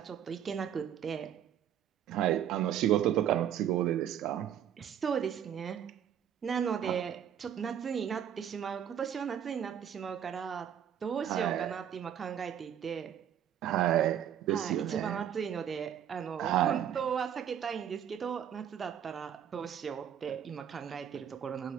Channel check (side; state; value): left; quieter; 9.4 dB